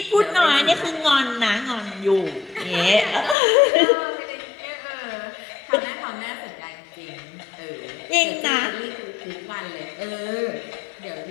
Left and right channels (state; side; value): drops out; right; at 3.4 s